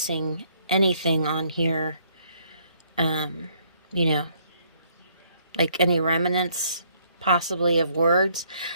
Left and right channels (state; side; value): inverted; both; correlation -0.66